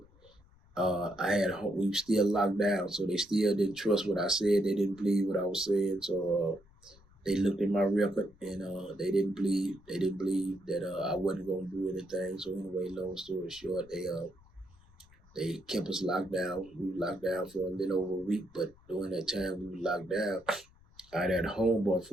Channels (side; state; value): left; noise; rumble, 27 dB below the sound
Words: we were still locked down, so they still didn't trust what I said. They didn't believe what I was saying. So they looked at my record and they didn't believe that I wasn't gonna do anything. So anyway, long story short, they kept us locked down. We were locked down for a little over a week, but during that time we were locked down, I had a homeboy